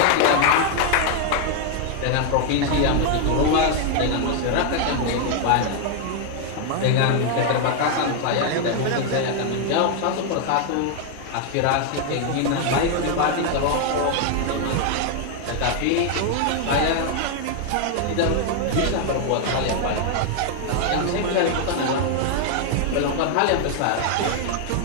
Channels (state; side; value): different; both; correlation 0.00